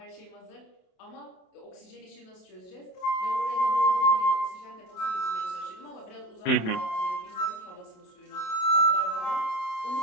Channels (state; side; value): late; right; 28 ms